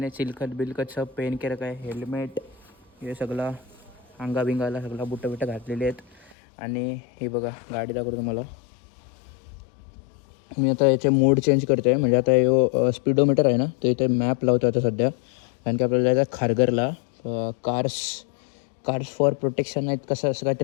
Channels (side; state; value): right; drops out; at 6.4 s